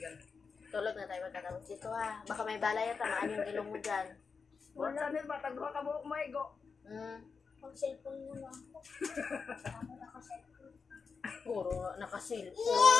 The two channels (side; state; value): right; quieter; 5.2 dB